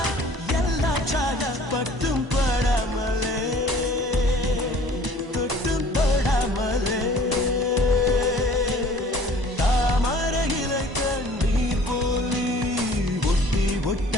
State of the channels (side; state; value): both; normal; correlation 0.50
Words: எல்லாம் சாயா பட்டும் படாமலே தொட்டும் படாமலே தாமரையிலை கண்ணீர் போல் நீ ஒட்டி